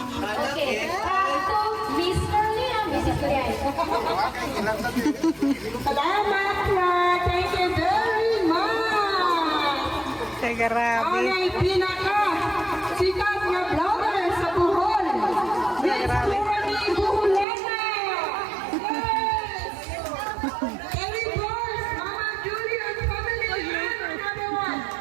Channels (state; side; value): drops out; left; at 17.4 s